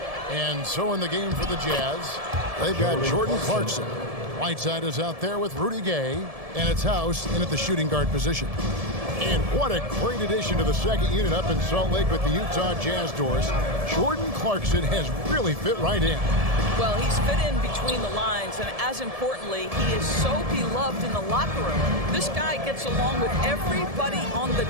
And so in the game for the Jazz, they've got Jordan Clarkson. Whiteside is out there with Rudy Gay, and it's House in at the shooting guard position. And what a great addition to the second unit up in Salt Lake with the Utah Jazz doors. Jordan Clarkson has really fit right in. Well, he's fit in between the lines, and as importantly, he is so beloved in the locker room. This guy gets along with everybody on the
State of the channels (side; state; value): left; late; 1.7 ms